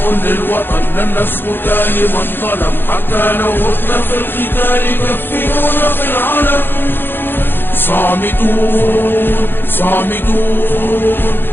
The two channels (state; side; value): late; right; 0.10 ms